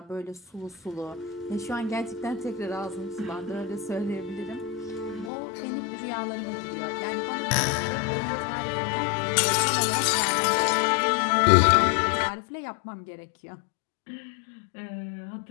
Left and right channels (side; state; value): right; drops out; at 5.3 s